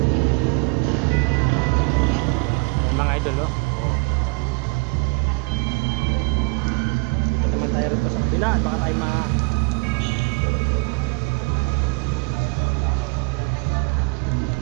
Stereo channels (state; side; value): quieter; left; 33.7 dB